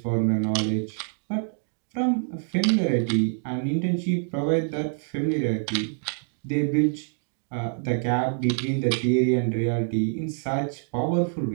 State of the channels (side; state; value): left; silent; 61 dB below the other